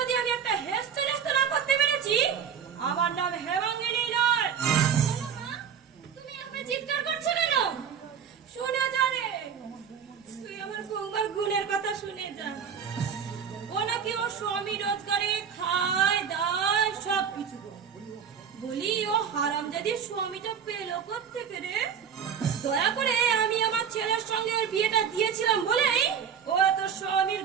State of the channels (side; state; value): left; quieter; 7.5 dB